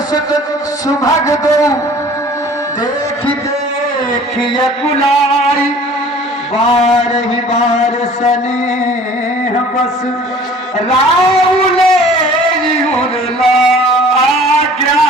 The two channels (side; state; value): both; normal; correlation 0.48